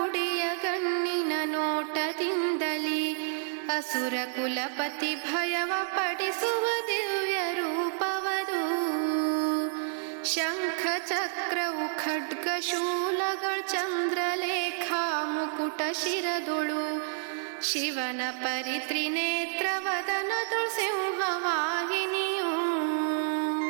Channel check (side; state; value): left; silent; digital silence